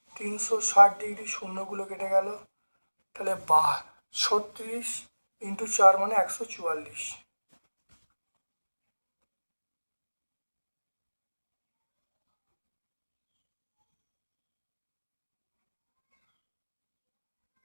360 ডিগ্রি, শূন্যগুলো কেটে গেল, তাহলে 36 ইন্টু 4 মানে 144।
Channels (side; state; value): both; inverted; correlation -1.00